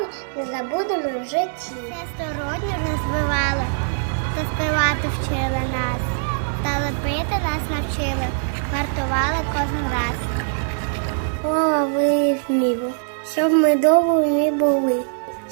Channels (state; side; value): silent; left; 58 dB below the other